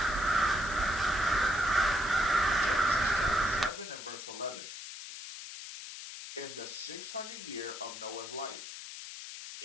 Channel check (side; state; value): left; noise; hiss, 10 dB below the sound